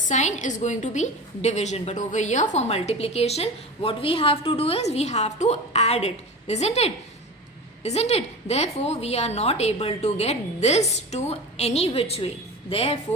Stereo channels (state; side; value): normal; both; correlation 0.31